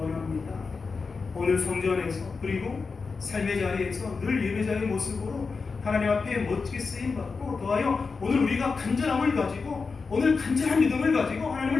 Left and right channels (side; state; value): right; quieter; 4.7 dB